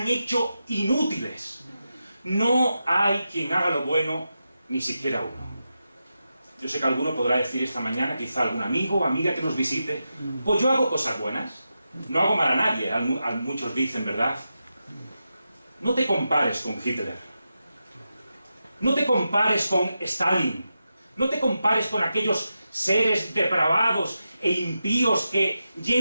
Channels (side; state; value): both; inverted; correlation -0.89